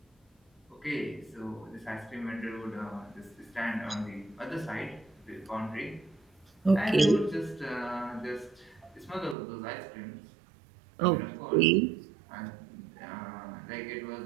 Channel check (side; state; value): left; drops out; at 9.3 s